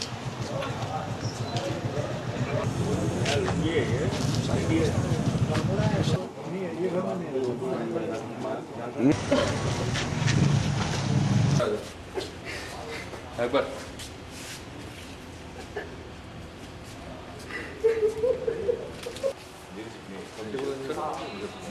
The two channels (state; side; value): identical; both; correlation 1.00